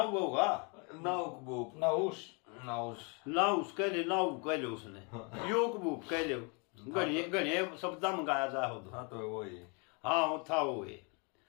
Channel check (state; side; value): quieter; right; 33.8 dB